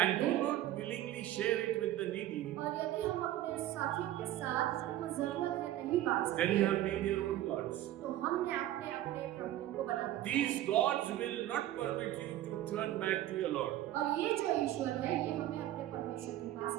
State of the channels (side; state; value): left; quieter; 13.6 dB